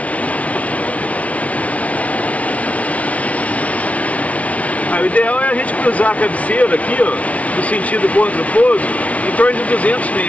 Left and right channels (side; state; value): right; late; 0.066 ms